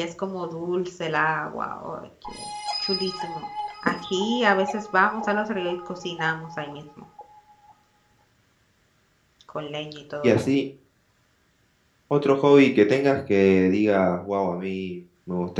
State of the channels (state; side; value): identical; both; correlation 1.00